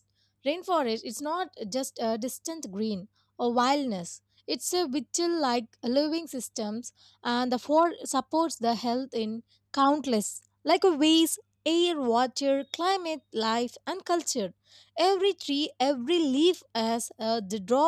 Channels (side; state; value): both; identical; correlation 1.00